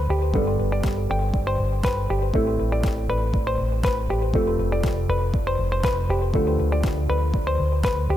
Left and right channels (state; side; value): noise; right; hiss, 29 dB below the sound